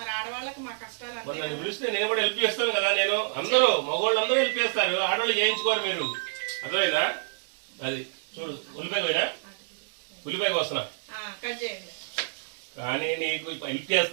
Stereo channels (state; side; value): silent; left; digital silence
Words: ఆడవాళ్ళకి మా కష్టాలు నన్ను పిలిస్తే నేను కూడా హెల్ప్ చేస్తాను కదా. నేను అందరూ మగవాళ్ళు అందరూ హెల్ప్ చేస్తారు, ఆడవాళ్ళు చేయించుకోరు. మీరు అర్థమైందా? అది చూడు, ఉల్లిపాయ పోయినా ఉల్లిపాయ వస్తున్నా కట్ చేయండి. కానీ నీకు హెల్ప్